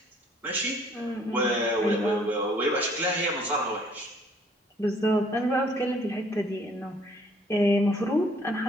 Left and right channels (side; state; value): both; normal; correlation 0.60